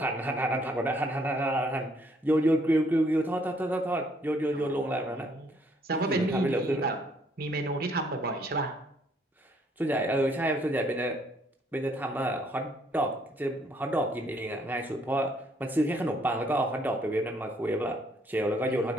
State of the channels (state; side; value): normal; both; correlation 0.66